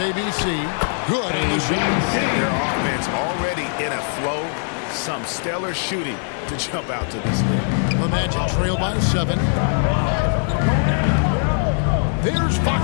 ABC. Good in the shot. Their offense already in a flow. Some stellar shooting to jump out to this lead. The Magic trail by 7. There's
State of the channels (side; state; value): right; silent; 62 dB below the other